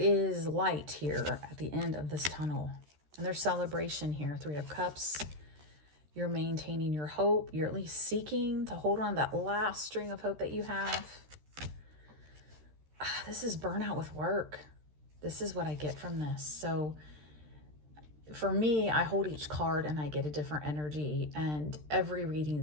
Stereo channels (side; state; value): left; late; 13 ms